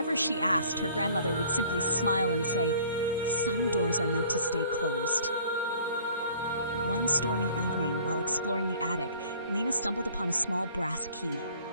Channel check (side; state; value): both; inverted; correlation -0.52